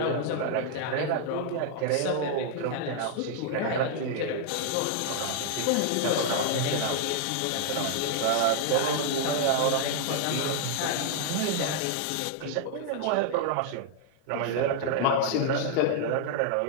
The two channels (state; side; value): different; both; correlation 0.00